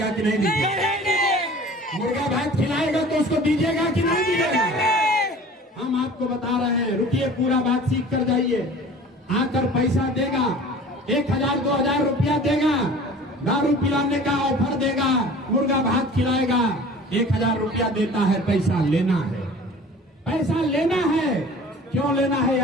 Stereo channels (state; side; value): normal; both; correlation 0.44